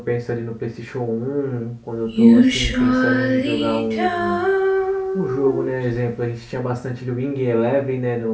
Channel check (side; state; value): both; identical; correlation 1.00